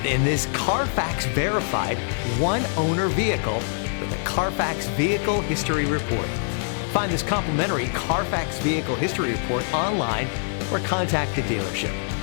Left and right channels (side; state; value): right; silent; digital silence